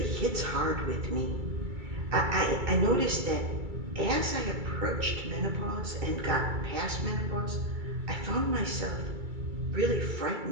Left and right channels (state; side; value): late; left; 2.3 ms